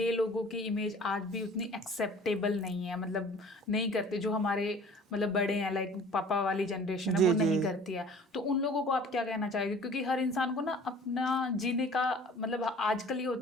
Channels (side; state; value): both; normal; correlation 0.47